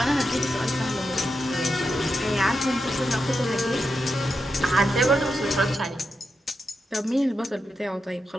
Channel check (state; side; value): normal; both; correlation 0.87